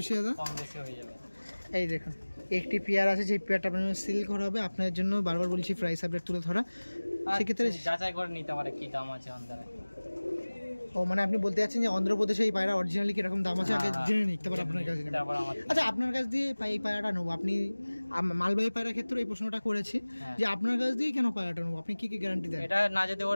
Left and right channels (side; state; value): both; inverted; correlation -1.00